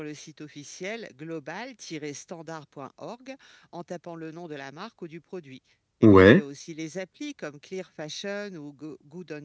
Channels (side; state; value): both; identical; correlation 1.00